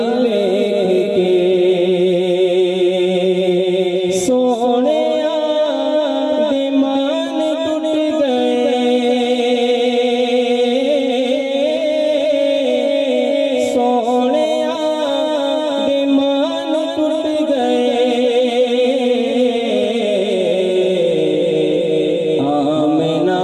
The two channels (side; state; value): both; identical; correlation 1.00